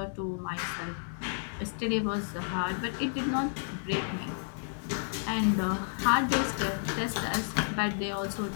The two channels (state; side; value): silent; right; digital silence